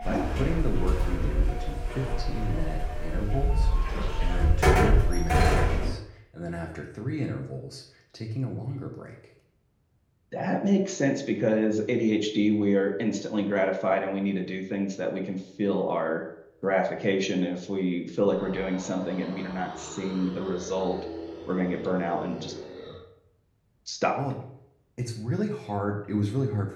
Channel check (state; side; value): identical; both; correlation 1.00